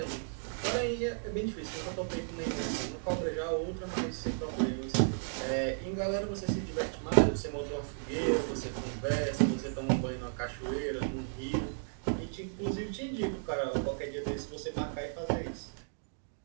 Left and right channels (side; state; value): left; silent; digital silence